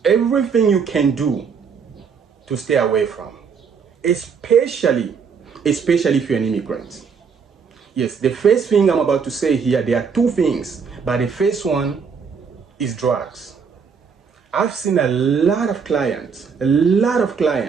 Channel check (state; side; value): quieter; left; 6.0 dB